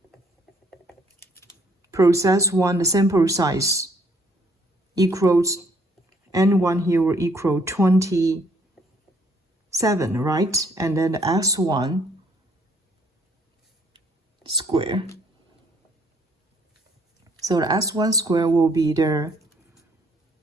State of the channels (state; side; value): normal; both; correlation 0.65